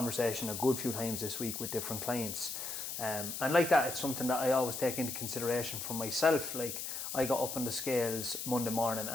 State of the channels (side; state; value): left; noise; hiss, 5 dB below the sound